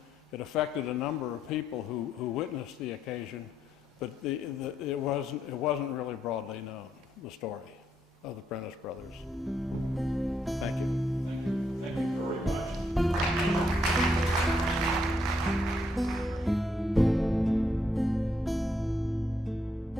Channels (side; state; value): both; normal; correlation 0.76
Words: It affected a number of people who witnessed the occasion, but it wasn't really broadly known, the story of the Prentiss Brothers. Thank you. Thank you. Thank you very much.